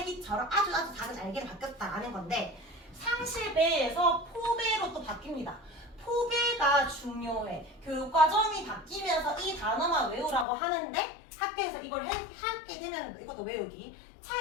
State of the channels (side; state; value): right; drops out; at 10.5 s